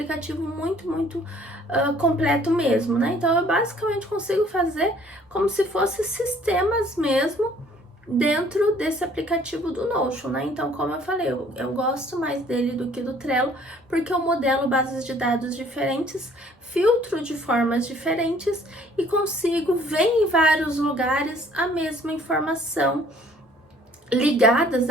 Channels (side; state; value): both; normal; correlation 0.57